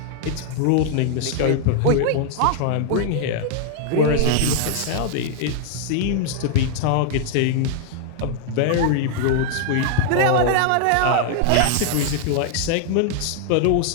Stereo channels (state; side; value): different; both; correlation 0.00